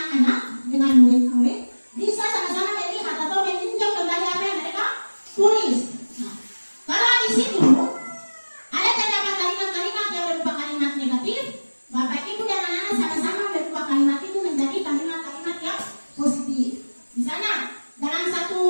dengan murid-murid, bisa sama-sama melihat atau meninjau kembali apa yang mereka tulis. Nah, kalau di situ ada terdapat kalimat-kalimat yang berupa kalimat negatif, Bapak Ibu dan anak-anak sama-sama berubah kalimat itu menjadi kalimat-kalimat yang positif. Misalnya dalam satu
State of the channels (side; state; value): both; inverted; correlation -1.00